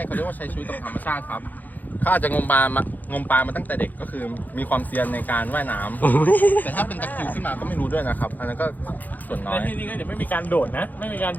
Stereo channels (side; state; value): right; late; 0.083 ms